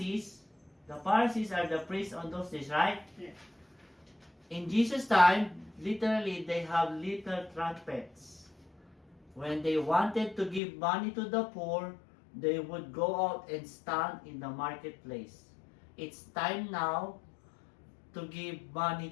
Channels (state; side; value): drops out; right; at 10.6 s